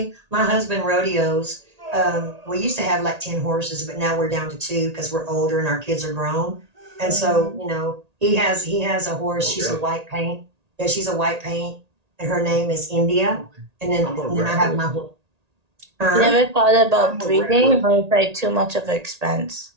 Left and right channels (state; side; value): late; left; 1.8 ms